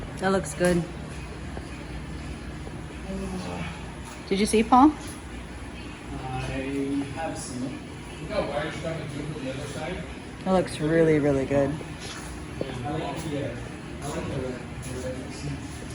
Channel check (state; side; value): identical; both; correlation 1.00